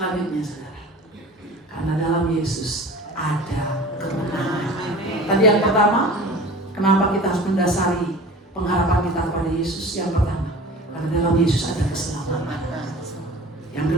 saudara. Karena dalam Yesus ada kemenangan. Tadi yang pertama, kenapa kita harus mendasari pengharapan kita kepada Yesus? Yang pertama, karena dalam Yesus ada keselamatan. Yang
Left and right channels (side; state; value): both; normal; correlation 0.40